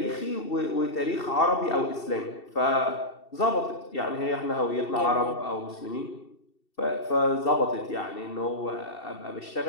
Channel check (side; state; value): right; late; 2.7 ms